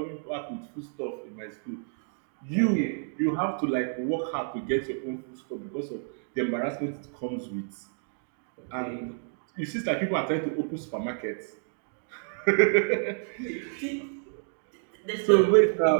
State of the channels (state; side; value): silent; left; digital silence